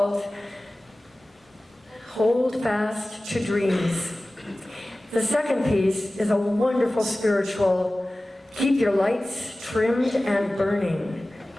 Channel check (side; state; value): both; normal; correlation 0.97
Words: Hold Fast to Dreams. The second piece is a wonderful spiritual, Keep Your Lights Trimmed and Burning.